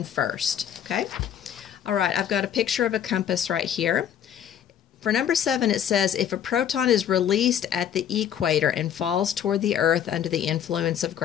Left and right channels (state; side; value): quieter; right; 9.5 dB